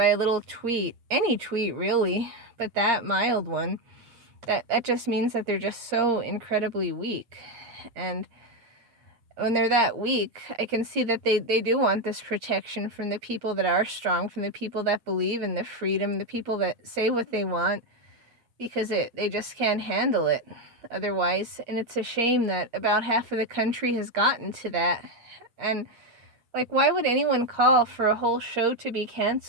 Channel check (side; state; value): left; late; 8.6 ms